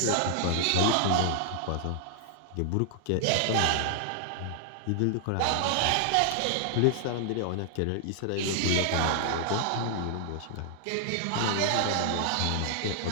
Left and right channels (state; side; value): different; both; correlation 0.00